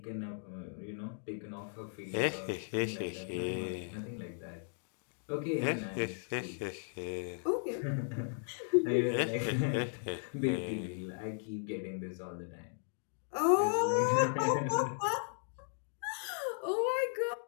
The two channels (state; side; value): silent; right; digital silence